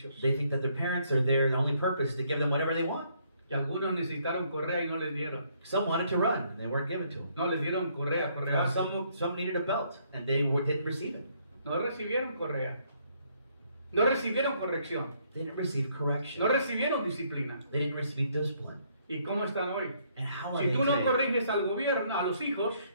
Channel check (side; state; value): both; inverted; correlation -0.69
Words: They think that their parents are there, and the only purpose is to give them whatever they want. Y algunos necesitaron correa y no les dieron. Some wanted to run, and they weren't given to them. No les dieron correa. Some needed a belt, and they didn't receive it. No recibieron correa. No recibieron corrección. They didn't receive correction. No recibieron disciplina. They didn't receive discipline. ¿Y cómo están hoy? And how are Si they tú no today? corriges al gobierno, a los hijos,